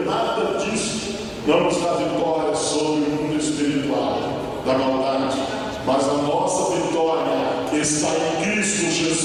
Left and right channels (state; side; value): identical; both; correlation 1.00